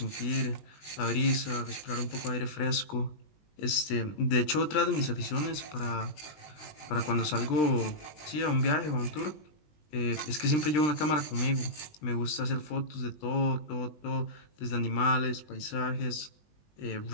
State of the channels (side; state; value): right; late; 20 ms